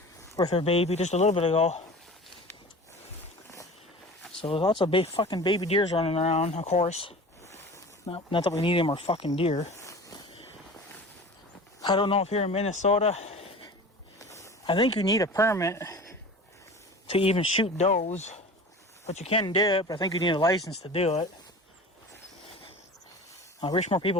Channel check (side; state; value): both; normal; correlation 0.37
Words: with her baby just a little bit ago. So lots of fucking baby deers running around, of course. Not that we need any more fucking deer. I don't know if here in Minnesota, I think you need a permit to even shoot does, but you can do it, but I think you need a license to do it. I wish more